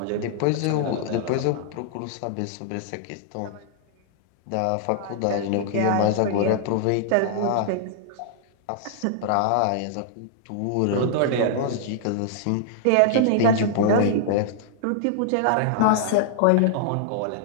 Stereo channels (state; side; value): different; both; correlation -0.01